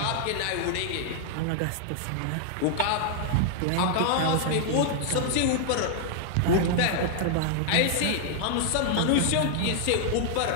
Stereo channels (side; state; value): both; different; correlation -0.01